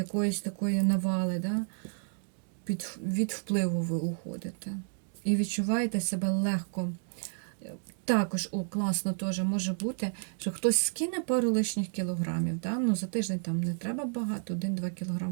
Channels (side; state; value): left; silent; digital silence